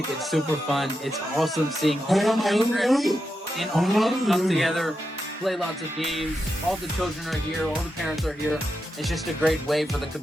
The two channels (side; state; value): both; normal; correlation 0.87